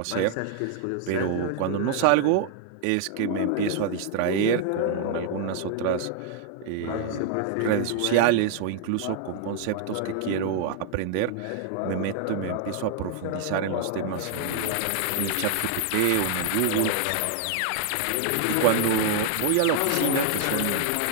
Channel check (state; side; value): different; both; correlation 0.00